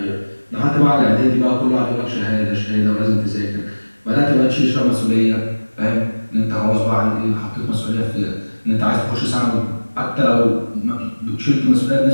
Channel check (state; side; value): inverted; both; correlation -1.00